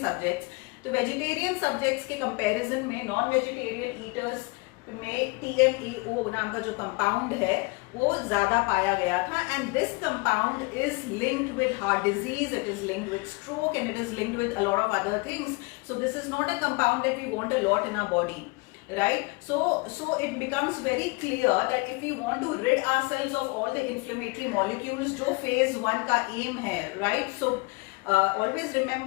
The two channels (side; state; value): right; quieter; 27.1 dB